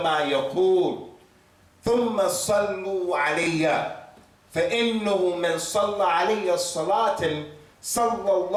ما يقول ثم صلوا علي فإنه من صلى علي الصلاة صلى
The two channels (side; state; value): both; identical; correlation 1.00